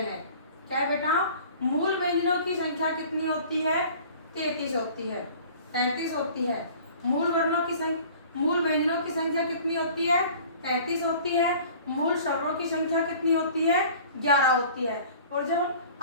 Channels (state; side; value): inverted; both; correlation -0.47